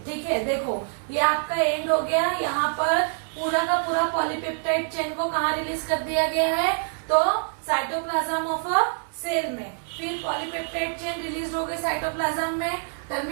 ठीक है, देखो ये आपका एंड हो गया. यहाँ पर पूरा का पूरा पॉलीपेप्टाइड चेन को कहाँ रिलीज कर दिया गया है, तो साइटोप्लाज्म ऑफ अ सेल में. फिर पॉलीपेप्टाइड चेन रिलीज हो गई साइटोप्लाज्म में.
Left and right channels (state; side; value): silent; left; 61 dB below the other